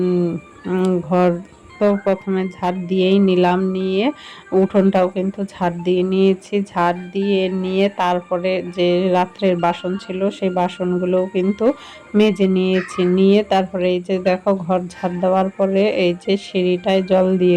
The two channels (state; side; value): identical; both; correlation 1.00